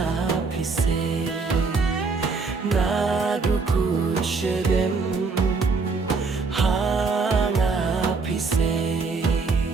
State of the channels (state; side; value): quieter; left; 4.4 dB